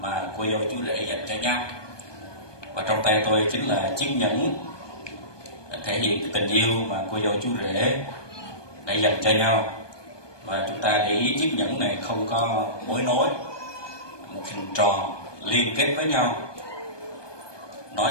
cô dâu chú rể dành cho nhau. Và trong tay tôi chính là chiếc nhẫn thể hiện tình yêu mà cô dâu chú rể đã dành cho nhau. Và chúng ta để ý chiếc nhẫn này không có mối nối, một hình tròn liên kết với nhau, nói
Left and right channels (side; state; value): right; late; 1.2 ms